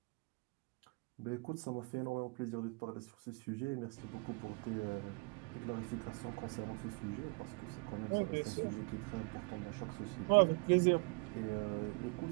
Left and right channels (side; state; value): left; quieter; 30.9 dB